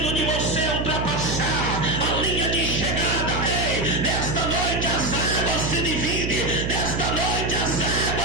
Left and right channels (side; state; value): right; noise; hum, 2 dB below the sound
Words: de você ultrapassar a linha de chegada, ei, nesta noite as águas se dividem, nesta noite as